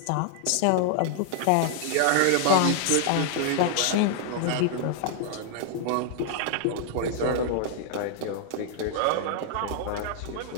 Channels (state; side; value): different; both; correlation -0.01